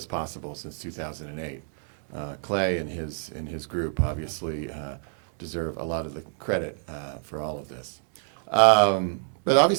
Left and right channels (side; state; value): left; silent; 60 dB below the other